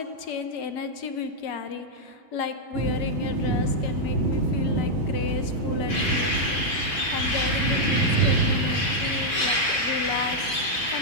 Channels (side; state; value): right; late; 6.1 ms